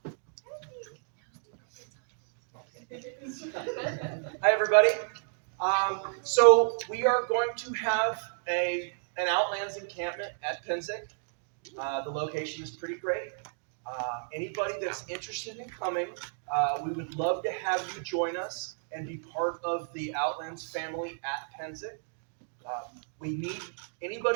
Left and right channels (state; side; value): silent; left; digital silence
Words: Hi, everybody. So we are going to have an Outlands encampment at Penzance. The location is pretty great. Anybody that's interested in coming, we would love to have you join us and be part of the Outlands family at Penzance. We need